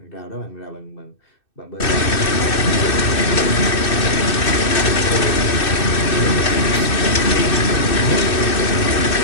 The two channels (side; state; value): right; late; 2.6 ms